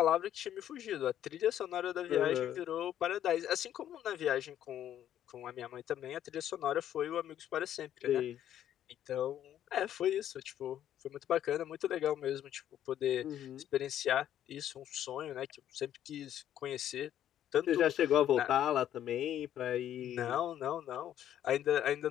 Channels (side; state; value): right; quieter; 11.0 dB